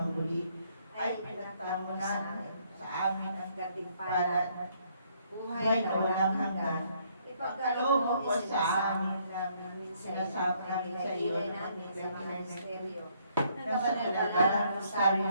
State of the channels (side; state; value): both; inverted; correlation -0.68